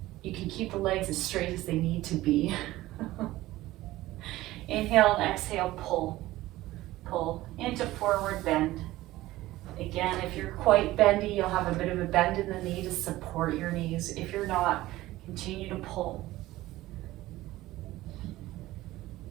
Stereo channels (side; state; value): left; quieter; 16.9 dB